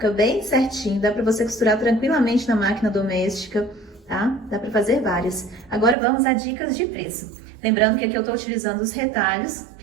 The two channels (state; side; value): drops out; left; at 6.0 s